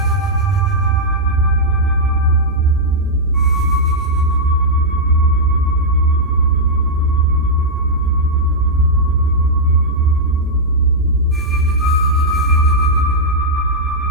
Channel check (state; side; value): normal; both; correlation -0.06